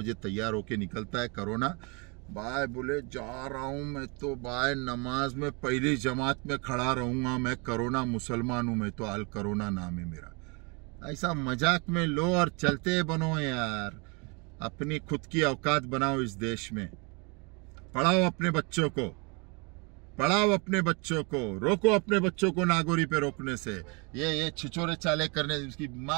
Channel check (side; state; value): left; quieter; 31.4 dB